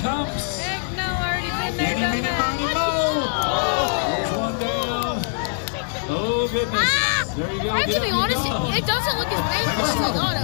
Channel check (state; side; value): silent; right; digital silence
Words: Heck no, I already been there, done that. There's one down. Oh goodness. There you go. Get up, get going. It doesn't look as painful as a lot